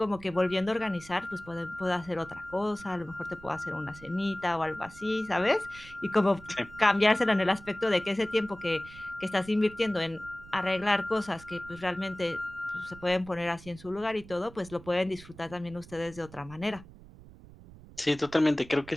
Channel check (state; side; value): noise; right; rumble, 19 dB below the sound